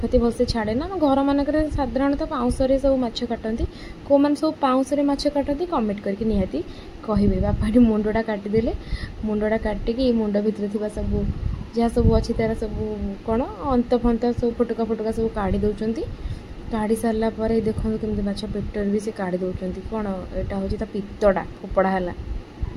भलसे छाड़े ना घर मानक साधारणतः पाउसरे सब माछ काटती कौ मैंने सब पाउसरे माछ काटती कमेंट करके निहाती कहे बापा मुंडा काटिदेले मुंडा काटिकी मुंड भितर थी सब जहाँ सब अच्छी तार सब कौन अंत फंत सब फुटका फुटका सब काढ़ी दौरान काढ़ी सारा देखो केमती माछ पेटर भी से काढ़ी दौरान कौन यहाँ हूँ पित्तटा फोपड़ा है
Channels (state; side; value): identical; both; correlation 1.00